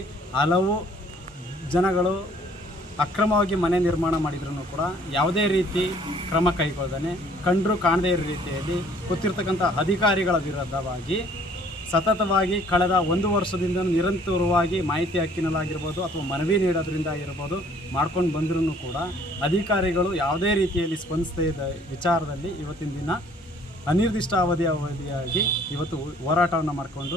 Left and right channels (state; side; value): normal; both; correlation 0.57